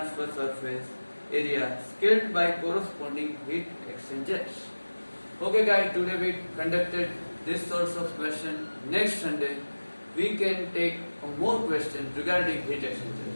surface area scaled by corresponding heat exchangers. Okay guys, today we conducted this sorts of question. Next Sunday we can take more questions regarding heat exchanger.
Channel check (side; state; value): both; inverted; correlation -1.00